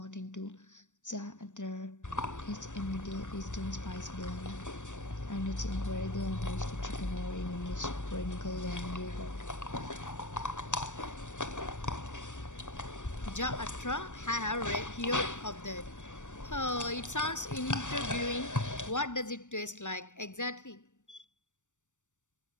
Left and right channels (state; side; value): late; right; 0.85 ms